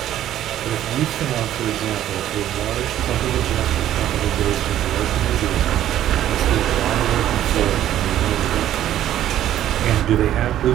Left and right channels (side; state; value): left; quieter; 12.1 dB